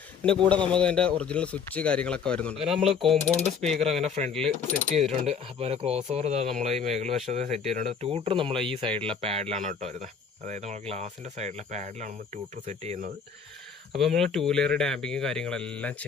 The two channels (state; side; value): quieter; right; 6.2 dB